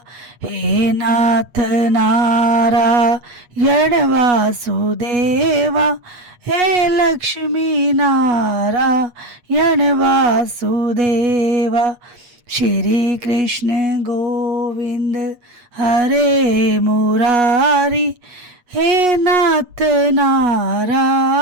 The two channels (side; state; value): left; late; 8.3 ms